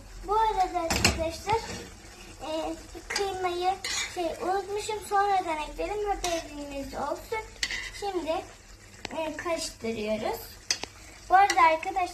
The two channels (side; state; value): both; identical; correlation 1.00